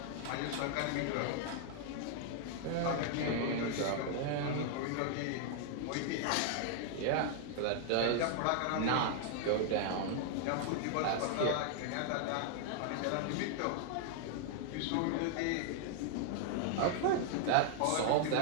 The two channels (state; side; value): different; both; correlation -0.01